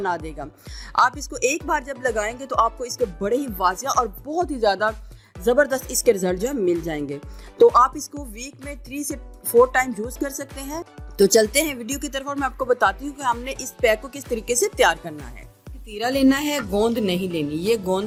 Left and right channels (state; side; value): identical; both; correlation 1.00